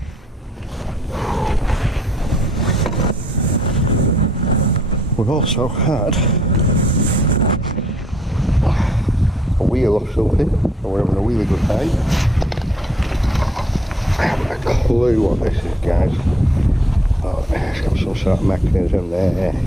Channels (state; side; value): normal; both; correlation 0.65